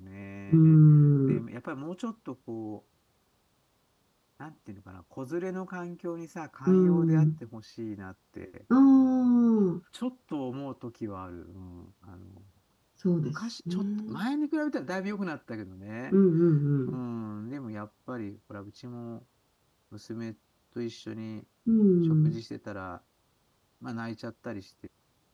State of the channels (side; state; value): both; identical; correlation 1.00